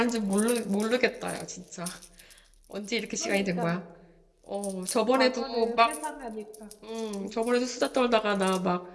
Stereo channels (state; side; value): identical; both; correlation 1.00